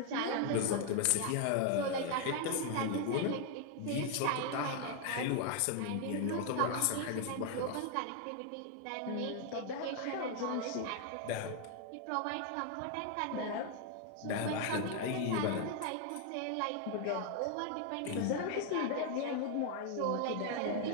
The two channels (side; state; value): both; different; correlation 0.00